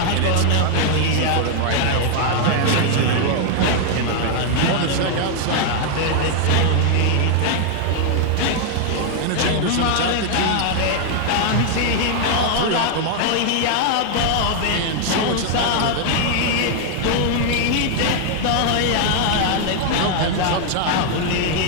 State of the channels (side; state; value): both; different; correlation 0.00